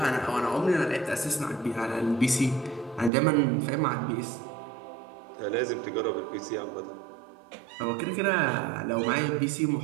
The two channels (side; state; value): left; drops out; at 3.1 s